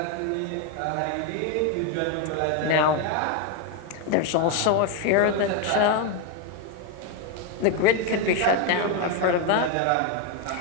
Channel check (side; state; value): both; different; correlation 0.02